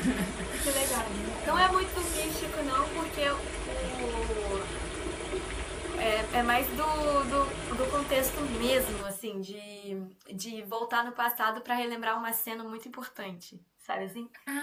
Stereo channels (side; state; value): both; identical; correlation 1.00